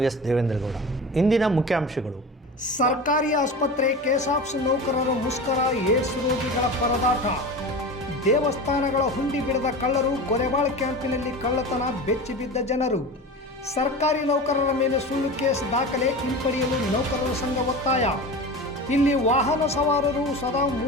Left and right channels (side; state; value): both; normal; correlation 0.30